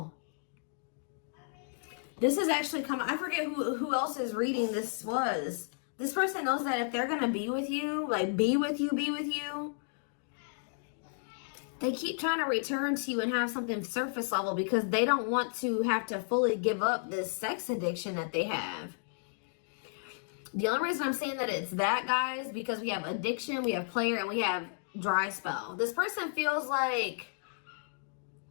This is actually coming. I forget who else's reading this was. This person knows that if they're going to be with you, like be with you, they keep trying to return to you and have something surface level because they don't want to have to fully give up this sex addiction that they have. The only reason I'm saying that it's that, guys, because we have addiction, we have player, and we have dry spell. This person feels like,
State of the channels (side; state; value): right; silent; digital silence